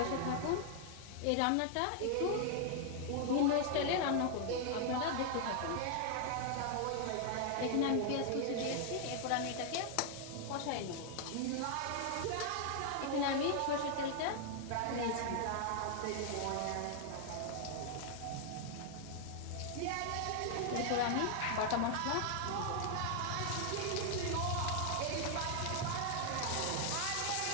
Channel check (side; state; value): both; different; correlation 0.00